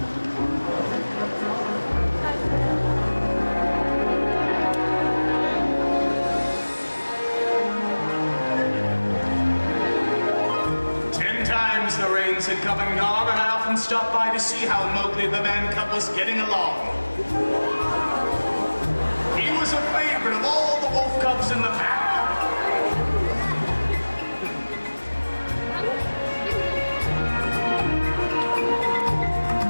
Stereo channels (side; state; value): both; inverted; correlation -1.00